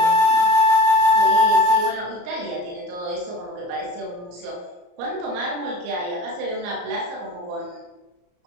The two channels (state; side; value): late; left; 34 ms